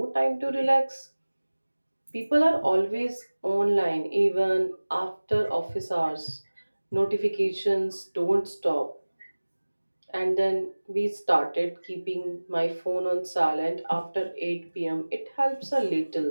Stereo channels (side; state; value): both; inverted; correlation -1.00